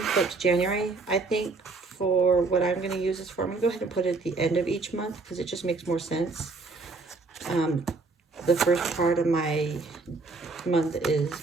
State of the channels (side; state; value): left; quieter; 3.8 dB